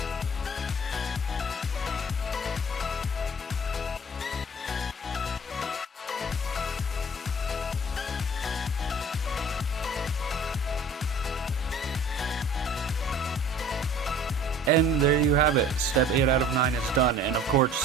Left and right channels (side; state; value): both; normal; correlation 0.48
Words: And there you have it. Step 8 out of 9 is done. And of course,